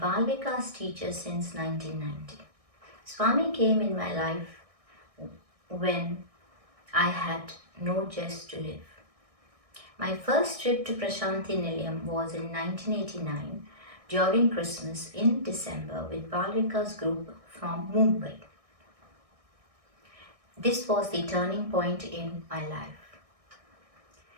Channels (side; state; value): left; late; 1.6 ms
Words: Vikas teacher since 1990. Swami came in my life when I had no zest to live. My first trip to Prashanti Nilayam was in 1989 during Christmas in December with Bal Vikas group from Mumbai. This was the turning point in my life.